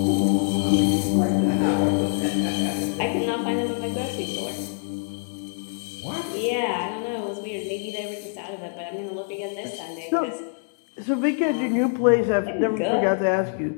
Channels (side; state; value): right; silent; digital silence